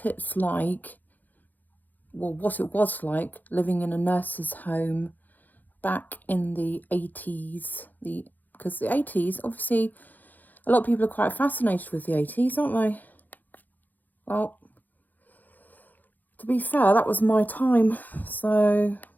it's like, what it was like living in a nurse's home back in the 80s. Because the 80s, obviously, a lot of people are quite fascinated with the 80s, aren't they? Well, to be fair, that was my time, so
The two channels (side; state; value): right; late; 0.084 ms